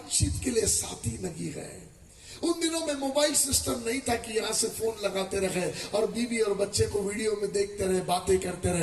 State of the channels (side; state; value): both; identical; correlation 1.00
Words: के लिए साथी नहीं है। उन दिनों में मोबाइल सिस्टम नहीं था कि यहां से फोन लगाते रहे और बीवी और बच्चे को वीडियो में देखते रहे, बातें करते